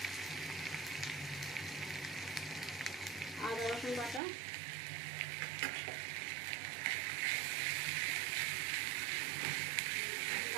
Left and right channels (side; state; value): left; drops out; at 4.2 s